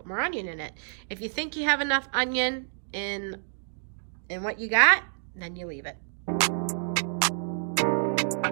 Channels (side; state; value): left; silent; digital silence